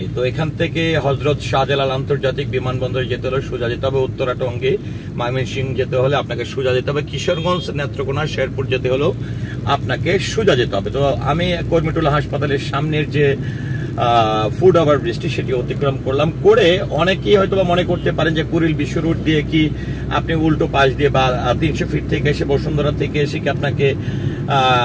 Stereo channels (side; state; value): both; identical; correlation 1.00